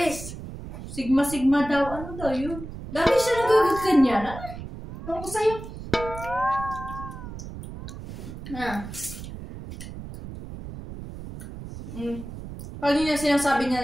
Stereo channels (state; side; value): noise; right; rumble, 11 dB below the sound